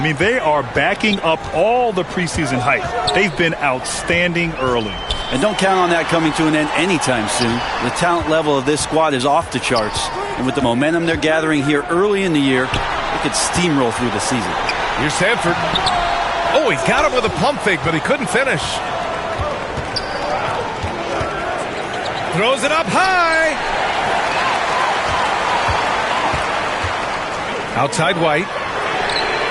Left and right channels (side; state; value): both; identical; correlation 1.00